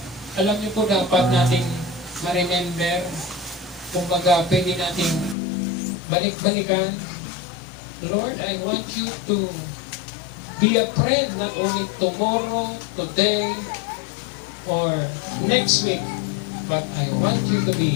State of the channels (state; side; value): drops out; right; at 5.4 s